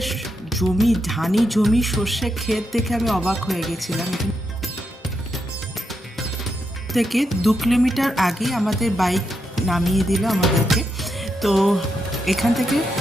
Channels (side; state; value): both; normal; correlation 0.83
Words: জমি, ধানি জমি, সর্ষে ক্ষেত দেখে আমি অবাক হয়ে গেছিলাম। থেকে 2 কিলোমিটার আগে আমাদের বাইক নামিয়ে দিল আমাদেরকে। তো এখান থেকে